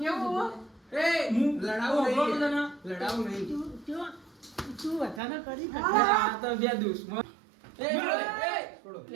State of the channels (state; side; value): drops out; left; at 5.2 s